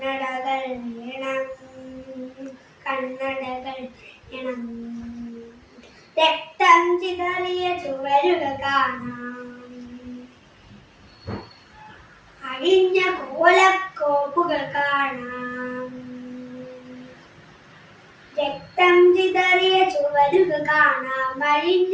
വേണം, കണ്ണടകൾ വേണം. രക്തം ചിതറിയ ചുവരുകൾ കാണാം, അഴിഞ്ഞ കോലക്കോപ്പുകൾ കാണാം. രക്തം ചിതറിയ ചുവരുകൾ കാണാം, അഴിഞ്ഞ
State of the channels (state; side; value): identical; both; correlation 1.00